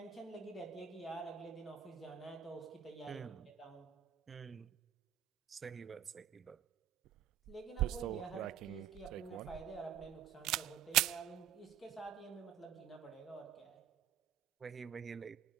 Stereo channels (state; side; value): quieter; left; 10.0 dB